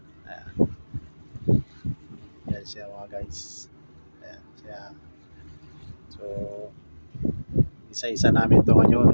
Ayan. Yan siya mga guys. Ayan siya. So, isa-isa namin to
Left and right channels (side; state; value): both; inverted; correlation -1.00